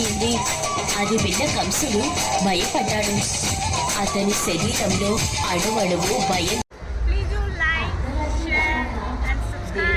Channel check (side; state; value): both; identical; correlation 1.00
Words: అది విన్న కంసుడు భయపడ్డాడు. అతని శరీరంలో అణువణువు భయం